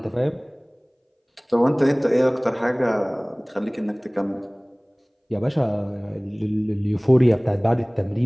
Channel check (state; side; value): identical; both; correlation 1.00